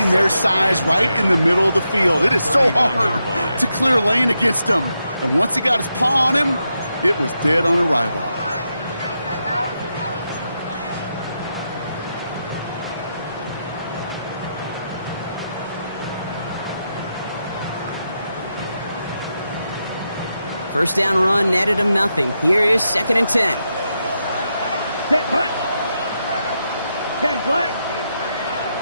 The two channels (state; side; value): inverted; both; correlation -0.84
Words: their size right in the middle of the field. It is so hard to clear lane against them. And once he got his paw on him, it was dead on arrival. First down run netted him nothing. Here is 2nd and 10. Set hut. 10 black.